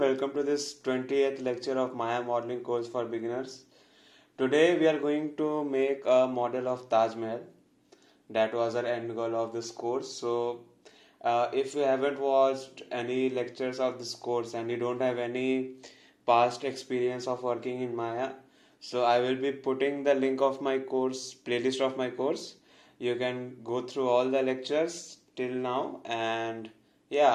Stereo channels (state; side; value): identical; both; correlation 1.00